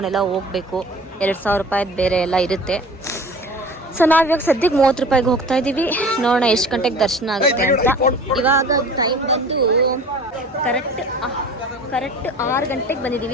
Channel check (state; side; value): normal; both; correlation 0.42